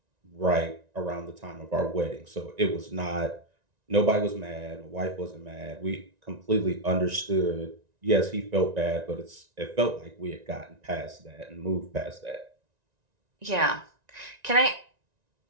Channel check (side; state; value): left; late; 1.9 ms